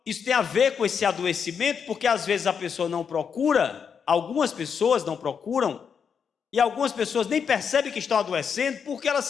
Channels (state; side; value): quieter; right; 6.8 dB